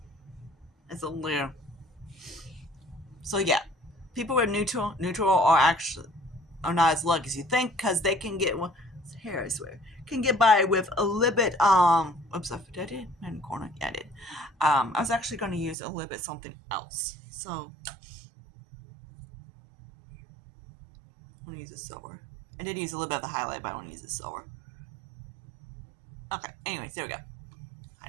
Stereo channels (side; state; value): left; drops out; at 15.8 s